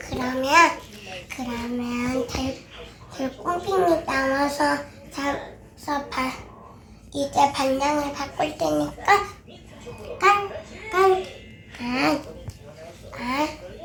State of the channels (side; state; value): both; identical; correlation 1.00